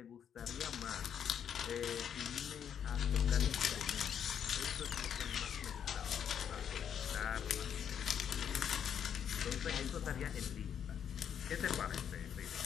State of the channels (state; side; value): quieter; right; 8.5 dB